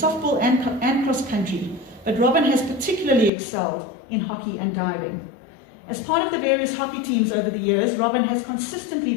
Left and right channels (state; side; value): drops out; right; at 3.3 s